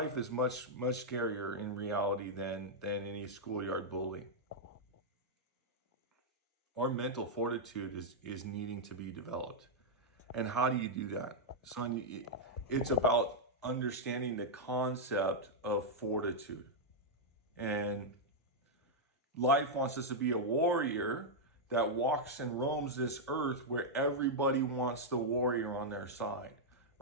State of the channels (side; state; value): both; normal; correlation -0.04